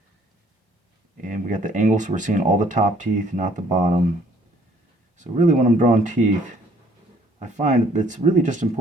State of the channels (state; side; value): normal; both; correlation 0.61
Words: we got the angle, so we're seeing all the top teeth, not the bottom. So really when I'm drawing teeth, I find it's really just